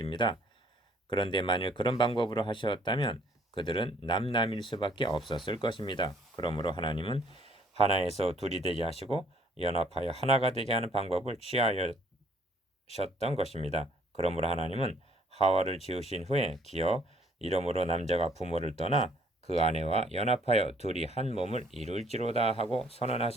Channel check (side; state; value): both; normal; correlation 0.62